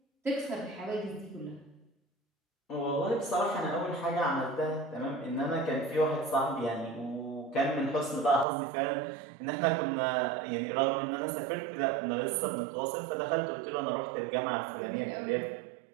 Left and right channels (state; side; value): drops out; left; at 8.5 s